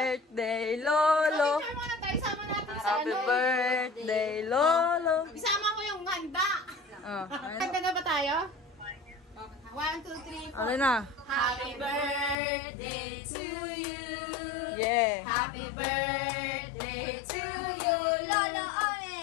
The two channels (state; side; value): drops out; right; at 12.4 s